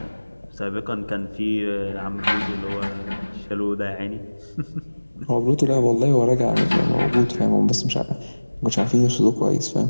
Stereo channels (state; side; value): inverted; both; correlation -1.00